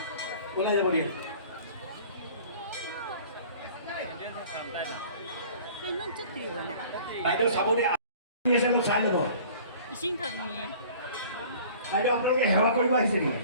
बोला जा बोलिए 그냥 찌띠거나 বাইদেউ চাবদে আছে ন চাই ল'ব 이싱 터니 বাইদেউ আপোনালোকে সেৱা কৰিব আহিছে নেকি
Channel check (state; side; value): inverted; both; correlation -0.47